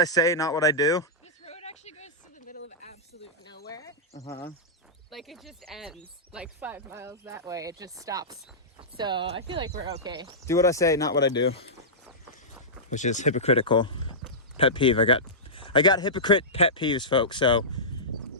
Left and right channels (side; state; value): both; normal; correlation -0.15